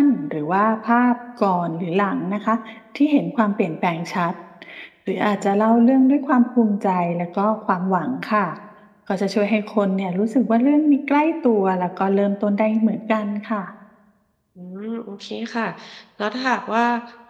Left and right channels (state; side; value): identical; both; correlation 1.00